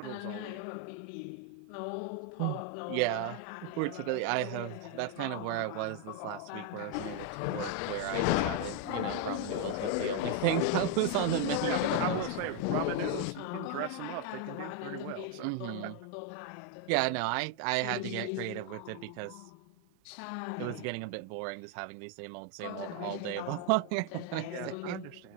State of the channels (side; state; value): both; different; correlation 0.01